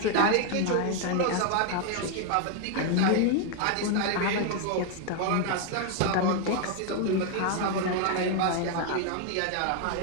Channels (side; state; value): both; different; correlation 0.01